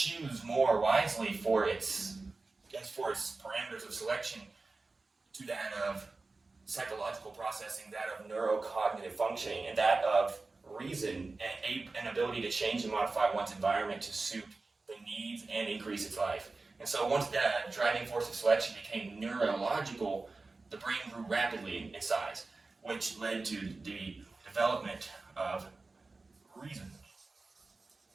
more wisely for its parameters of selection to that of psychological processing, that of neurocognitive functioning, and that of reason and an ability to change and modify one's environment to suit the needs and increase its life. And so once that driving force of selection became neurological, the brain grew rapidly in size, which led to the development of reason,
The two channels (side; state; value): left; quieter; 3.6 dB